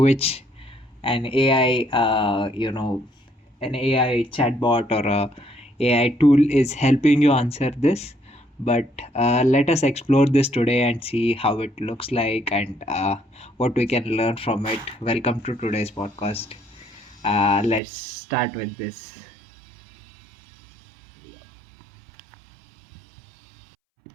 an AI, an AI chatbot or a AI tool is helping you answer this. But let us explore this today and see how it looks like and what we can learn from it. Welcome to today's podcast. Let's start with this.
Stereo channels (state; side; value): drops out; left; at 17.8 s